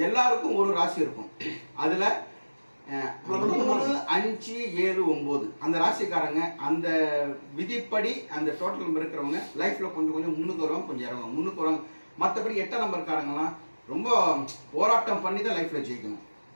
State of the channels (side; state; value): both; inverted; correlation -1.00